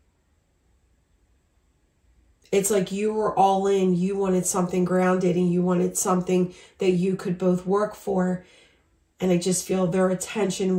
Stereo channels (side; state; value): both; identical; correlation 1.00